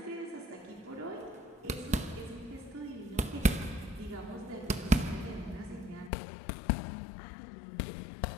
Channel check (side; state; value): right; drops out; at 6.1 s